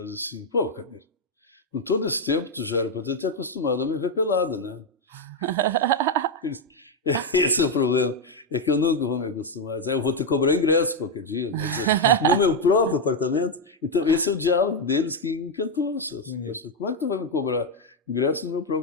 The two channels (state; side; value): normal; both; correlation 0.03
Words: diz assim: pô, Caneiro, com todo esse tempo tu já era para ter acostumado a me ver pelada, né? Esse é o problema, é que eu nunca vou me acostumar. Eu vou ter que cobrar ingresso qualquer dia, né? No meu próprio apartamento. Então esse é o diálogo deles que encantou as pessoas. Como é que tu vai me cobrar ingresso no meu